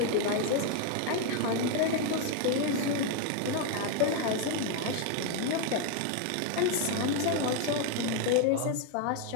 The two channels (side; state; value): both; different; correlation 0.01